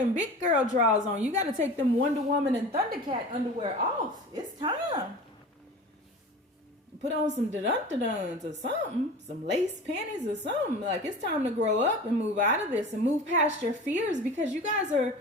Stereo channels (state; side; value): normal; both; correlation 0.36